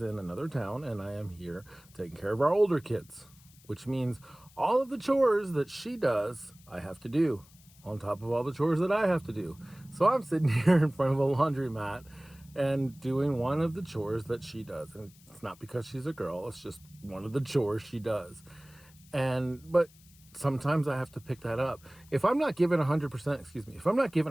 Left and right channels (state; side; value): noise; left; hiss, 26 dB below the sound